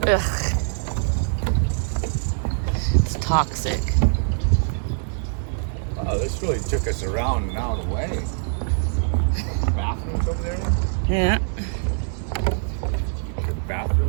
Ugh. It's toxic. Wow, this really took us around and out of the way. Bathrooms over there? Yeah.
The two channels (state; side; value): silent; left; digital silence